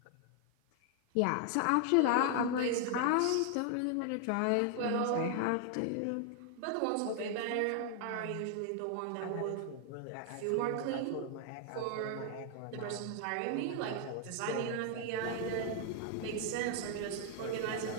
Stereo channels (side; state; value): both; different; correlation 0.00